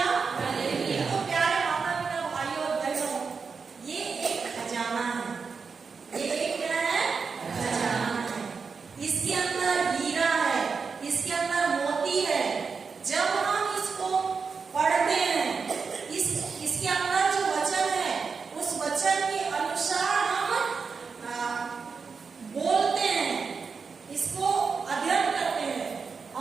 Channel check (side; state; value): left; quieter; 5.2 dB